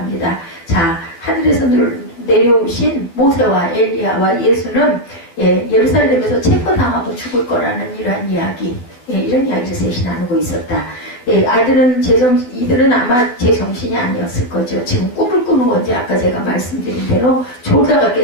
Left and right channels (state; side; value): late; right; 12 ms